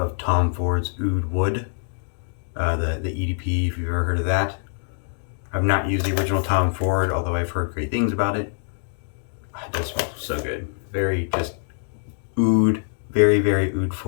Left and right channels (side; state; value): right; silent; digital silence